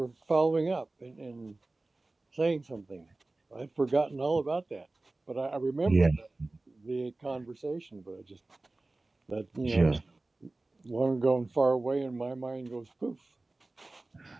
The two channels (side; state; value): left; quieter; 3.1 dB